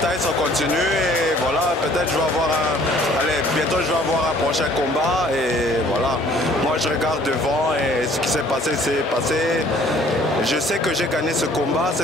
ça continue et voilà, peut-être je vais avoir bientôt je vais avoir un prochain combat et voilà. Moi je regarde devant et ce qui s'est passé s'est passé. Je sais que j'ai gagné ce combat,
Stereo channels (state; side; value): normal; both; correlation 0.57